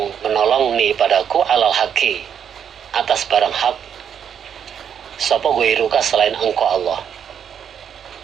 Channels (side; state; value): left; quieter; 8.3 dB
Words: menolong ni padaku alal haqi, atas barang hak, sapa ghairuka selain engkau Allah.